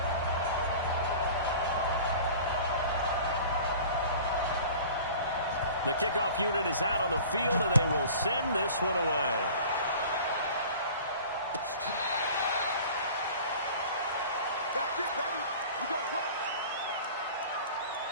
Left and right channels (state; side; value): inverted; both; correlation -0.43